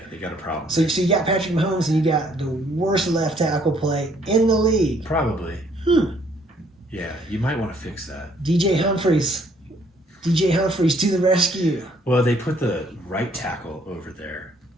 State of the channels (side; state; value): both; normal; correlation 0.65